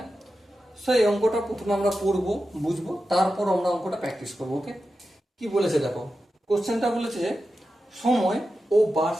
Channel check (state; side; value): normal; both; correlation 0.91